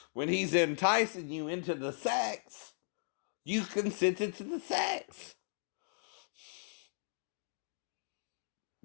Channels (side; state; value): right; silent; digital silence